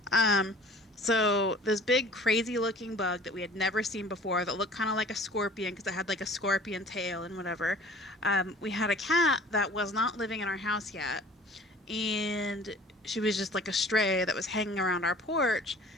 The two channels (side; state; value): both; normal; correlation 0.48